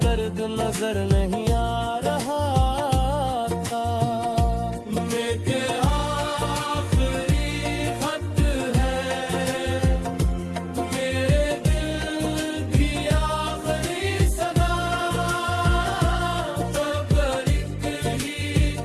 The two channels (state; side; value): identical; both; correlation 1.00